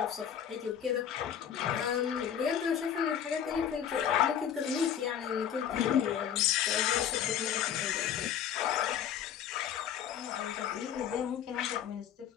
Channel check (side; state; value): right; quieter; 9.1 dB